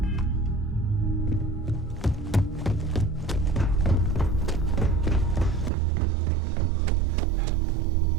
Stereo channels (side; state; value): left; drops out; at 5.7 s